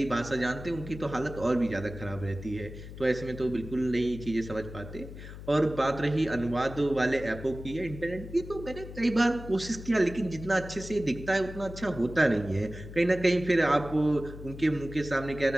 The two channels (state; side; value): noise; left; hum, 13 dB below the sound